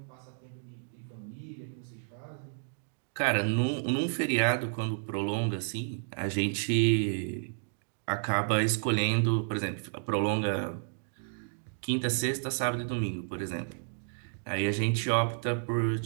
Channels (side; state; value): left; silent; digital silence